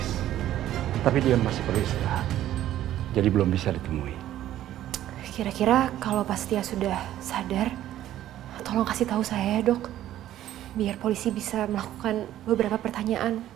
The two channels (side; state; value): left; quieter; 12.8 dB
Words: tapi dia masih perlu istirahat, jadi belum bisa ditemui. Kira-kira kalau Pak Setia sudah sadar, tolong kasih tahu saya ya dok, biar polisi bisa melakukan beberapa pertanyaan